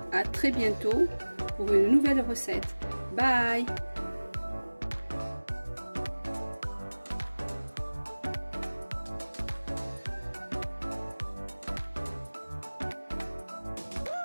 à très bientôt pour une nouvelle recette. Bye!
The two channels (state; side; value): inverted; both; correlation -1.00